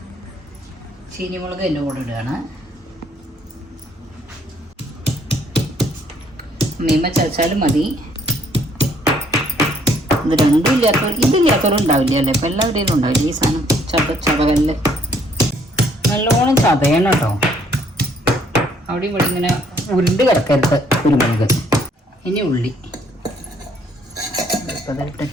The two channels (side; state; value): both; normal; correlation 0.65